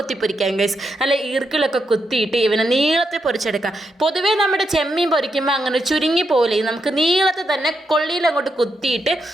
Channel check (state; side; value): normal; both; correlation 0.82